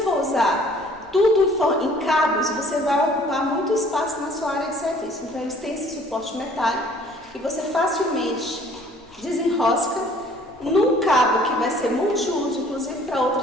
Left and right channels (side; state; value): both; normal; correlation 0.56